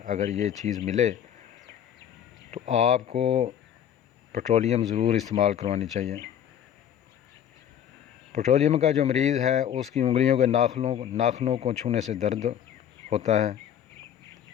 اگر یہ چیز ملے تو آپ کو پیٹرولیم ضرور استعمال کروانی چاہیے۔ پیٹرولیم کا جو مریض ہے اس کی انگلیوں کے ناخنوں کو چھونے سے درد ہوتا ہے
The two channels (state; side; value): quieter; right; 9.7 dB